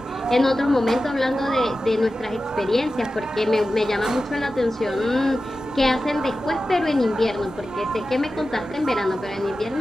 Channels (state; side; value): normal; both; correlation 0.93